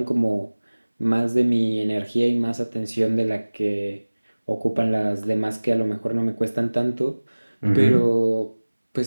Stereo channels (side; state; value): both; inverted; correlation -1.00